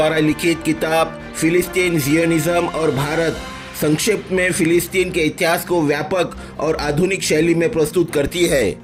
लिखित किताब फिलिस्तीन जियोनिज्म और भारत संक्षेप में फिलिस्तीन के इतिहास को व्यापक और आधुनिक शैली में प्रस्तुत करती है,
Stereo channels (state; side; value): identical; both; correlation 1.00